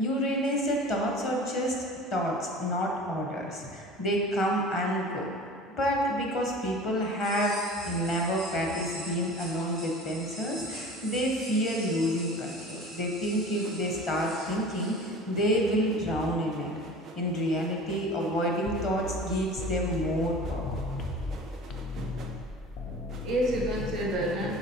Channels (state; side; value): normal; both; correlation 0.40